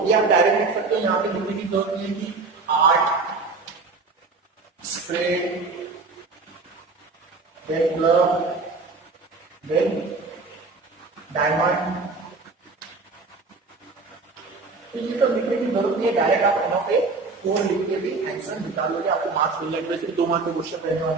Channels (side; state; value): left; quieter; 3.9 dB